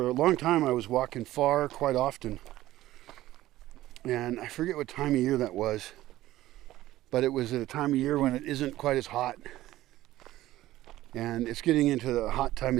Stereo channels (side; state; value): left; quieter; 15.4 dB